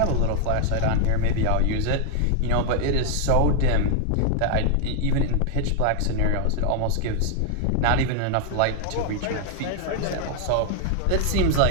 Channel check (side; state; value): both; different; correlation 0.00